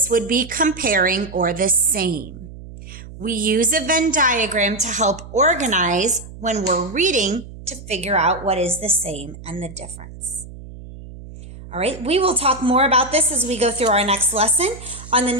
would be comparing or the same. We use a Venn diagram to help organize when we're reading to figure out what is the same and the difference. All right, we will talk more about this as we go through our next lesson. On the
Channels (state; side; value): noise; right; hum, 15 dB below the sound